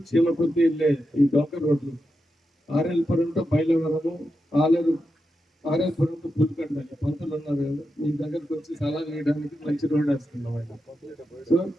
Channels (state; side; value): normal; both; correlation 0.88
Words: చీమకుర్తి వెళ్ళే ఈ డొంక రోడ్లు, ఆర్ఎల్పురం టు బయలువరము, ఆర్ఎల్పురం టు పులికండ. పంతులు ఉన్నారు కదా, మీ దగ్గరకు వచ్చి సలహా వేయడానికి మంచి రోడ్ వేస్తున్నాం ఆయన. సో